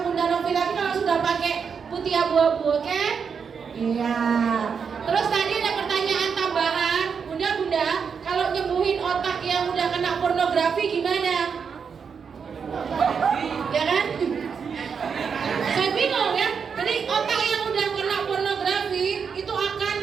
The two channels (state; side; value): quieter; left; 6.3 dB